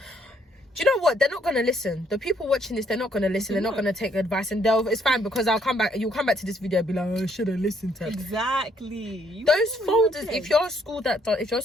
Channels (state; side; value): normal; both; correlation 0.68